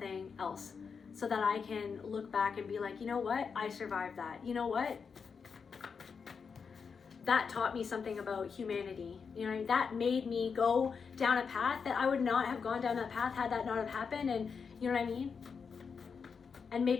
else, so that I can look back and be like, you know what, I survived that. You know what, that taught me something about humanity. You know, that made me go down a path that I would not have gone down that path had that not have happened. And you know what I mean? And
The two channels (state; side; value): quieter; right; 5.8 dB